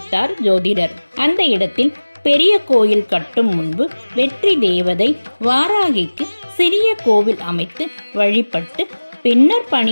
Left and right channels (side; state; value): both; inverted; correlation -1.00